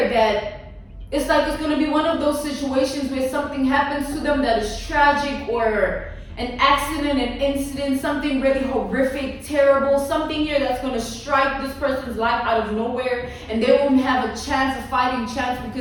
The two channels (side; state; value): both; identical; correlation 1.00